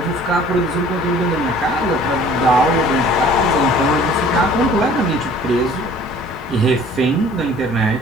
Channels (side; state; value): both; normal; correlation 0.51